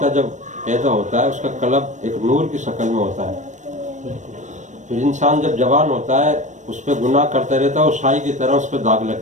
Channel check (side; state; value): left; late; 0.35 ms